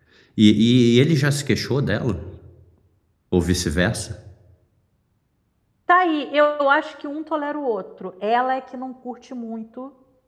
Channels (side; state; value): both; identical; correlation 1.00